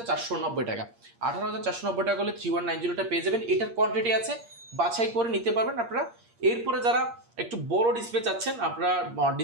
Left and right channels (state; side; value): late; left; 8.6 ms